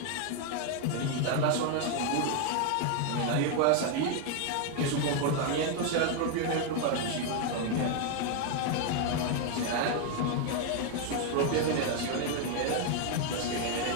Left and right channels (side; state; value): both; different; correlation 0.01